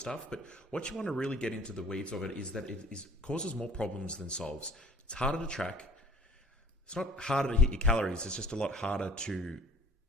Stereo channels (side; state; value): both; normal; correlation 0.52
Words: But what you want to really get into the weeds of it is that it causes more problems than solves. It's harder to track. It's not harder to hit your calories. It's just a lot harder to